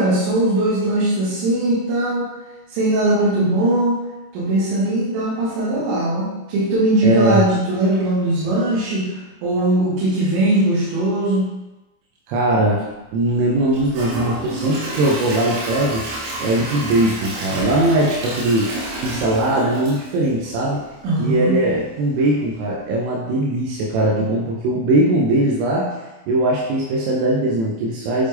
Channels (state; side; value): late; left; 27 ms